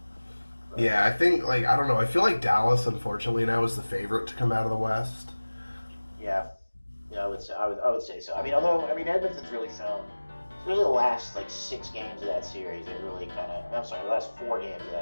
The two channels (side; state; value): both; inverted; correlation -1.00